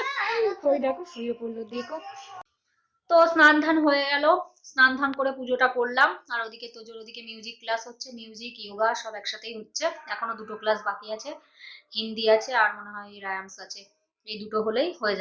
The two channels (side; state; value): both; identical; correlation 1.00